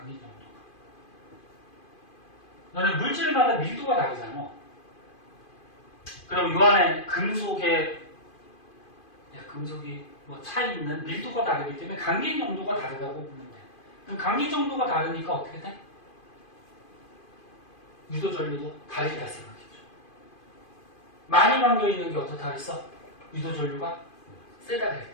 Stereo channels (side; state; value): right; late; 2.5 ms